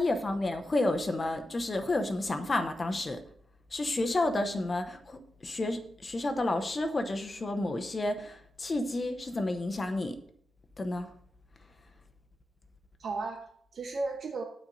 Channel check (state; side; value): normal; both; correlation 0.91